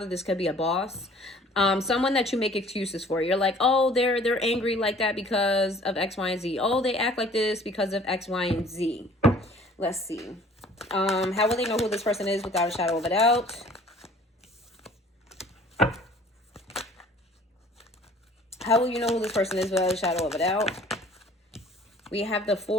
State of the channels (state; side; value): normal; both; correlation 0.52